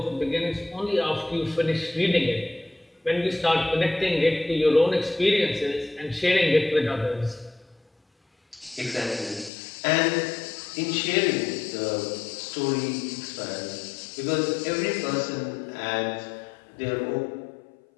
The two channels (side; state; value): right; drops out; at 9.5 s